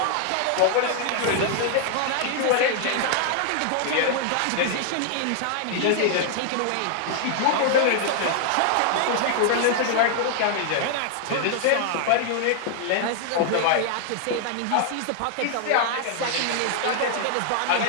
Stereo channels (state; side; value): different; both; correlation 0.00